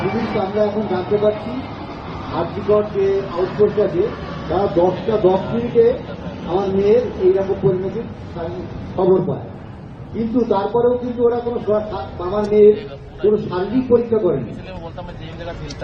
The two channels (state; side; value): identical; both; correlation 1.00